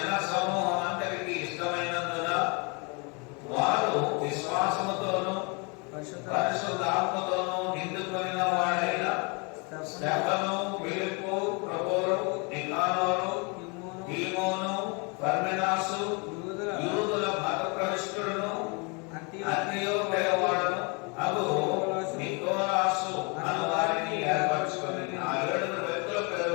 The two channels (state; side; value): quieter; right; 32.3 dB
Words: సమూహం అందరికీ ఇష్టమైనందున వారు విశ్వాసముతోనూ పరిశుద్ధాత్మతోనూ నిండుకొనిన వాడైన స్టెఫను, ఫిలిప్పు, ప్రొకోరు, నికానోరు, తీమోను, పర్మెనాసు, యూదుల మత ప్రవిష్టుడును, అంతియోకయ వాడును అగు నికోలాసు అను వారిని ఏర్పరచుకొని ఆ 7 వ్యక్తుల పేరు